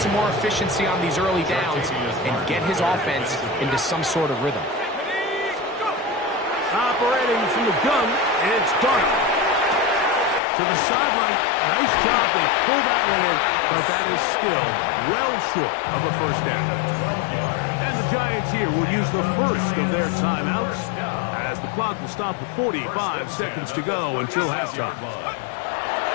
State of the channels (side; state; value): right; drops out; at 10.4 s